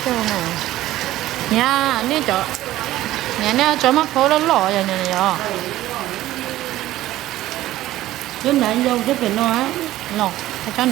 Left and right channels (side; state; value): left; quieter; 15.1 dB